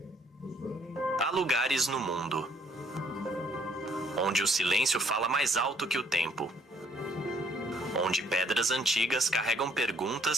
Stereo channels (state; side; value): normal; both; correlation 0.64